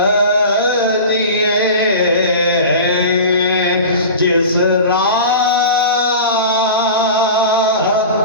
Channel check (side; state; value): both; inverted; correlation -0.33